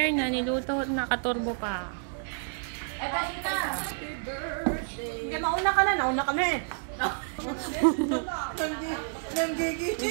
na niluto, nakaturbo pa. Ay, dahil ka. Happy birthday. Mauna ka na, nauna ka na eh.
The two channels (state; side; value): silent; left; 58 dB below the other